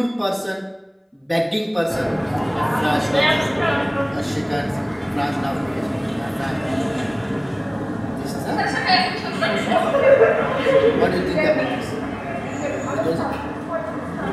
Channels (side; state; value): both; identical; correlation 1.00